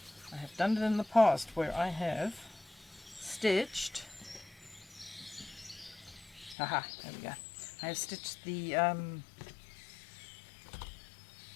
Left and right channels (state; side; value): drops out; right; at 6.6 s